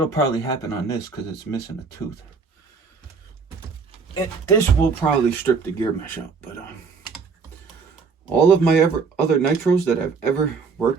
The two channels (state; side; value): quieter; left; 5.1 dB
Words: probably happen on this because it's missing a tooth. This will probably strip the gear mesh out, but all of my other nitros that I've ever